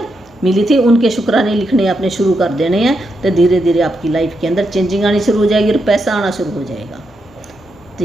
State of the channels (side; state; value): both; normal; correlation 0.83